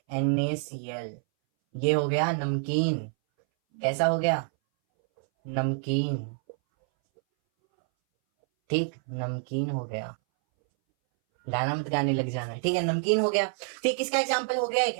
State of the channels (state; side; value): silent; left; 60 dB below the other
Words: NaCl, ये हो गया नमकीन, कैसा हो गया, नमकीन, ठीक, नमकीन हो गया, गाना मत गाने लग जाना, ठीक है, नमकीन हो गया, ठीक। इसका एग्जांपल हो गया